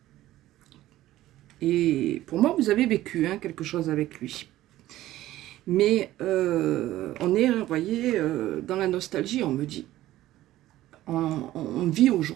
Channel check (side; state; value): left; quieter; 15.0 dB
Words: Et pour moi, vous avez vécu hein, quelque chose avec lui. Mais on est, vous voyez, dans la nostalgie, on me dit. On vit